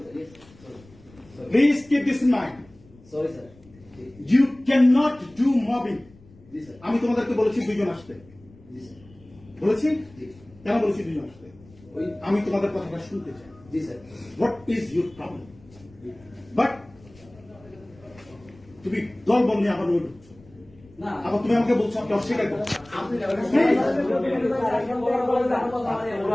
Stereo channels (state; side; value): noise; left; rumble, 25 dB below the sound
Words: sir. Yes. Sorry. Sorry. Please keep this in mind. Sorry, sir. You cannot do mobbing. G sir. আমি তোমাদেরকে বলেছি দুইজন আসতে। জি স্যার। বলেছি? জি। কেন বলেছি দুইজন আসতে? ওই আমি তোমাদের কথাটা শুনতে চাই। জি sir. What is your problem? But তুমি দল বল নিয়ে আবার ঢুকছো। না আবার তুমি আমাকে বলছো আপনি অস্বীকার করছো। আপনি